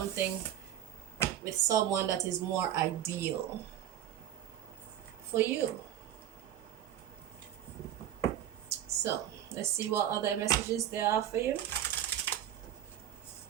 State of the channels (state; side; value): quieter; left; 11.3 dB